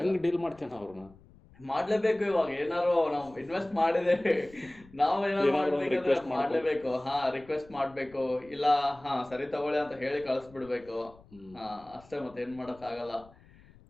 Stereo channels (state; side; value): noise; left; rumble, 25 dB below the sound